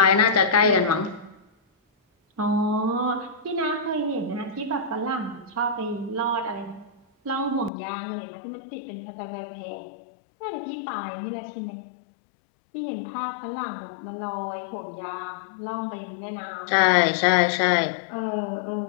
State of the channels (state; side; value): drops out; right; at 7.7 s